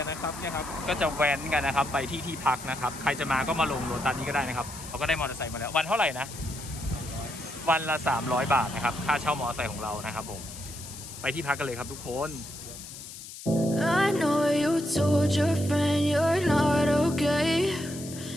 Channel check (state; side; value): noise; left; hiss, 13 dB below the sound